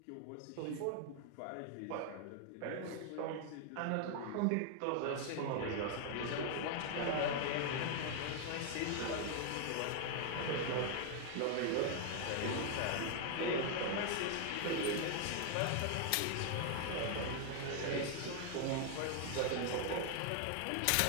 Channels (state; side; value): different; both; correlation 0.00